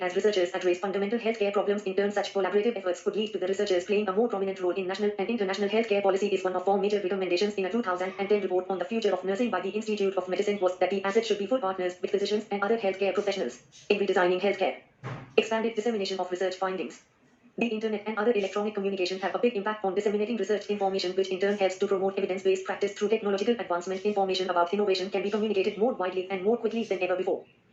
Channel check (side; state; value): both; identical; correlation 1.00